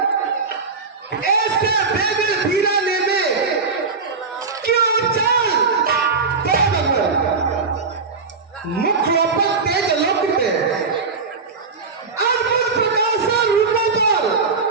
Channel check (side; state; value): left; quieter; 4.6 dB